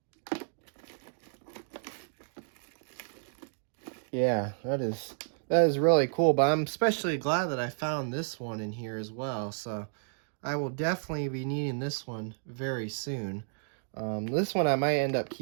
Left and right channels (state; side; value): silent; left; digital silence